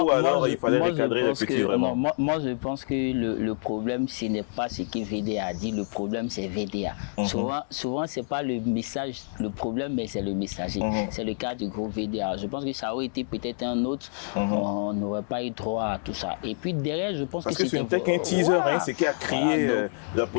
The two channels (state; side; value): silent; right; 58 dB below the other